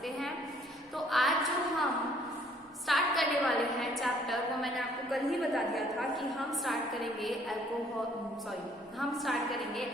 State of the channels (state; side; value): normal; both; correlation 0.61